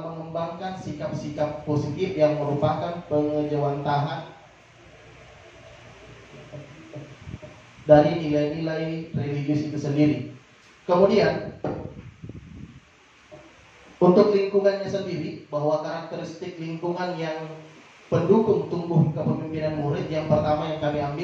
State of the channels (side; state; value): both; identical; correlation 1.00